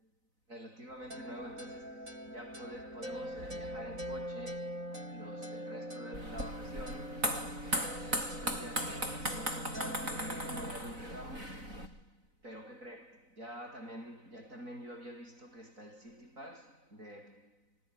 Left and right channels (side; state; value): left; late; 4.0 ms